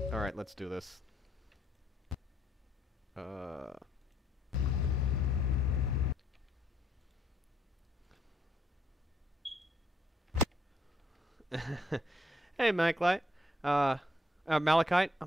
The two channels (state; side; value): normal; both; correlation 0.71